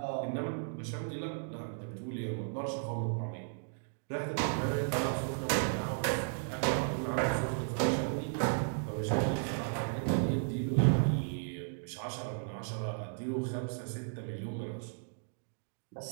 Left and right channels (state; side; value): silent; left; digital silence